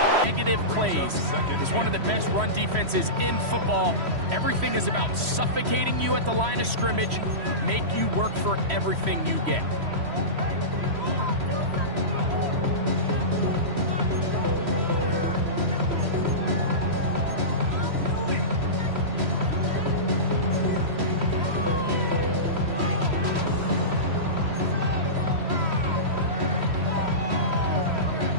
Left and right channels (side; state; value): left; late; 3.1 ms